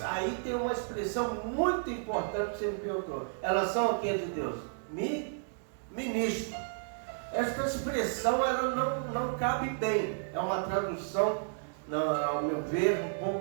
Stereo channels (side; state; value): left; silent; digital silence